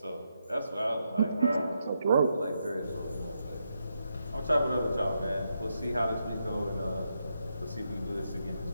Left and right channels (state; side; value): inverted; both; correlation -0.82